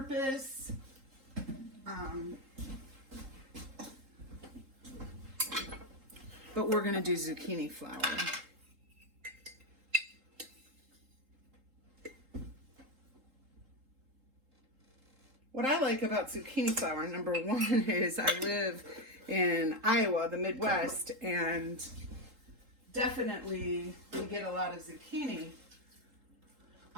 But we're going to do zucchini flour. What I like about zucchini flour, number one, is I live in Iowa, the Midwest, and definitely we get a lot of zucchini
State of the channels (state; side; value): late; left; 3.8 ms